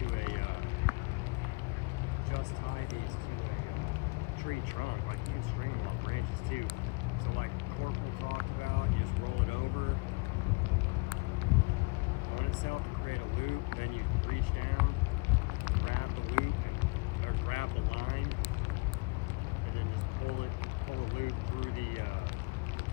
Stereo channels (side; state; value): right; quieter; 27.8 dB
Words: a tree trunk. Like, you can string them off branches too. So like Corporal talked about, you just roll it over on itself to create a loop, then you reach down, grab the loop, or grab the line, and then just pull a loop through the